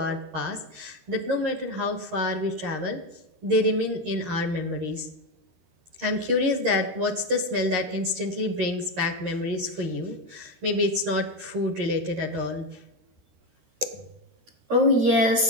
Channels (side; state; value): left; late; 13 ms